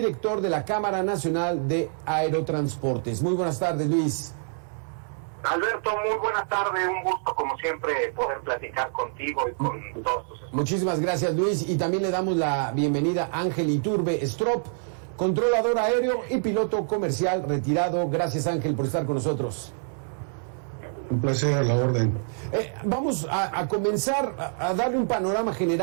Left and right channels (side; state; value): left; silent; 61 dB below the other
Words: de la Cámara Nacional de Aerotransportes. Muy buenas tardes, Luis. Alberto, muy buenas tardes, un gusto como siempre poder platicar contigo y con todos tus. Muchísimas gracias, Luis, y también le damos la bienvenida a Ángel Iturbe Strop, controlador aéreo y piloto comercial retirado. Gracias, Ángel, por estar con nosotros. Un placer, a la orden. Vamos a comenzar a darle un panorama